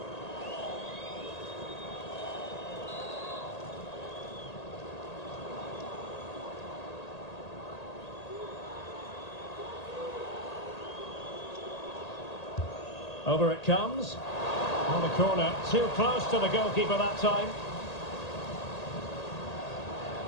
Over it comes. On the corner, too close to the goalkeeper that time.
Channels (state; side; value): late; right; 1.8 ms